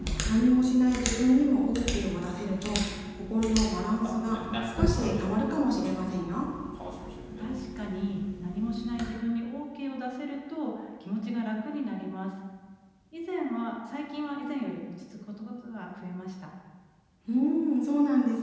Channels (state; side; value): identical; both; correlation 1.00